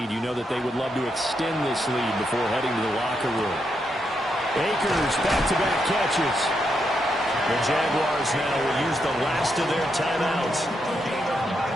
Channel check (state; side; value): normal; both; correlation 0.81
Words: you know that they would love to extend this lead before heading to the locker room. Akers back-to-back catches. The Jaguars now will use the last of their timeouts,